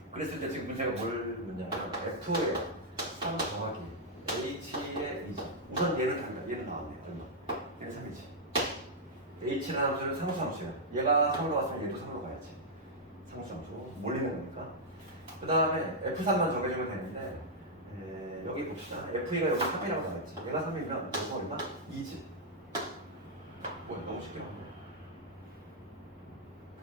그랬을 때 지금 문제가 뭘 묻냐면 F의 3 더하기 H의 2죠. 우선 얘는 달라. 얘는 나왔네. 얼마? 얘는 3이지. H라는 함수는 상수함수야. 얘가 3으로 왔으면 얘도 3으로 가야지. 상수함수. 몰리는 거니까. 그 다음에 F3만 정해주면 되는데 여기 봅시다. F가 여기 3이라고 나왔지. 얘가 3이면 여기가 얼마? 2지. 뭐야 너무 쉽게 나왔네.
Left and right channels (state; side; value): normal; both; correlation -0.06